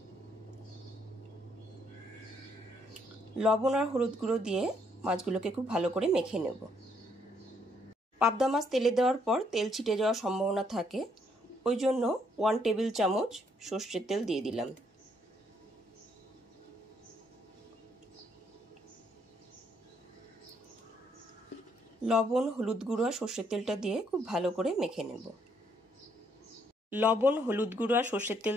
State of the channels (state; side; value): normal; both; correlation 0.71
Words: লবণ আর হলুদ গুঁড়ো দিয়ে মাছগুলোকে খুব ভালো করে মেখে নেব। পাবদা মাছ তেলে দেওয়ার পর তেল ছিটে যাওয়ার সম্ভাবনা থাকে, ওই জন্য 1 টেবিল চামচ সর্ষের তেল দিয়ে দিলাম। লবণ, হলুদ গুঁড়ো আর সর্ষের তেলটা দিয়ে খুব ভালো করে মেখে নেব। লবণ, হলুদ গুঁড়ো আর সর্ষের তেল